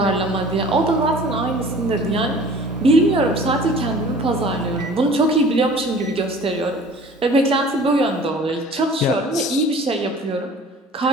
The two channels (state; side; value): normal; both; correlation 0.46